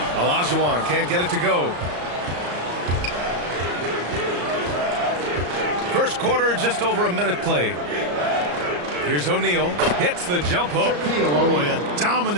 Olajuwon can't get it to go. First quarter, just over a minute played. Here's O'Neal. Hits the jump hook. Boy, a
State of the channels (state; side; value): late; left; 34 ms